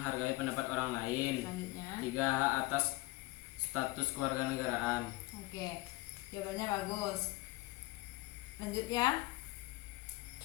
pendapat orang lain, selanjutnya. 3. Hak atas status kewarganegaraan. Oke. Jawabannya bagus. Lanjut ya.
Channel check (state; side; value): quieter; right; 21.0 dB